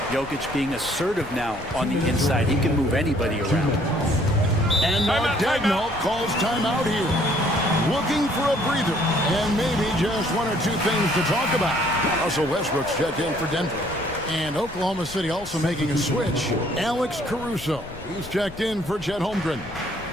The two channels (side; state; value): left; noise; rumble, 17 dB below the sound